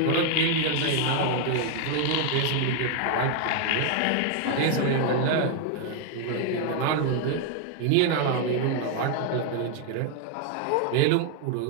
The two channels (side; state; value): both; different; correlation 0.00